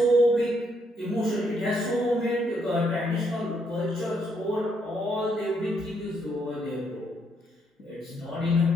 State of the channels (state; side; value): normal; both; correlation 0.74